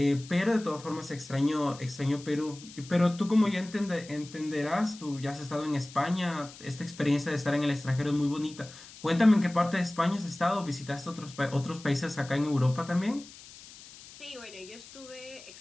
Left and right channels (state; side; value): noise; left; hiss, 18 dB below the sound